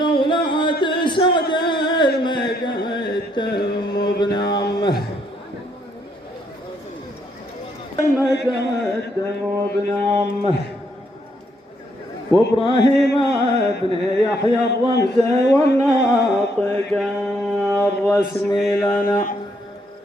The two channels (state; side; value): normal; both; correlation 0.73